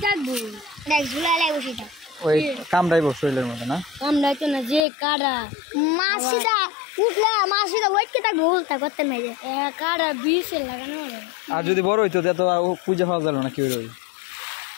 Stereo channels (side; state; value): right; drops out; at 4.8 s